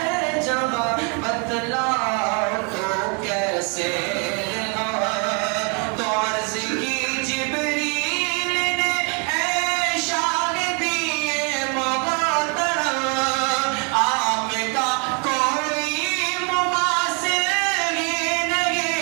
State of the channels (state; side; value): quieter; left; 35.8 dB